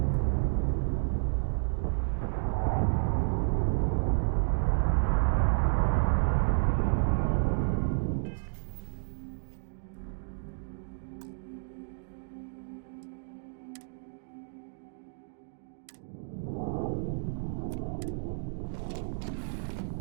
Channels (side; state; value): left; silent; digital silence